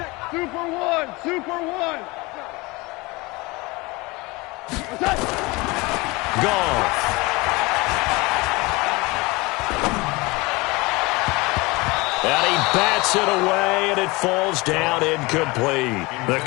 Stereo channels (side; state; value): right; quieter; 24.0 dB